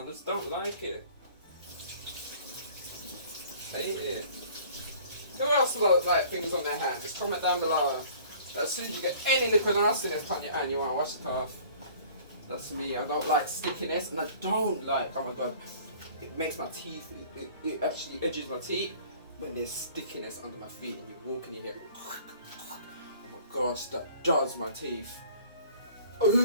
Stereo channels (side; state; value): both; inverted; correlation -0.51